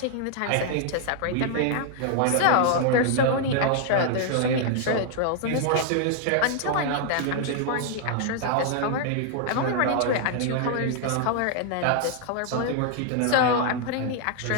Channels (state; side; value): different; both; correlation 0.00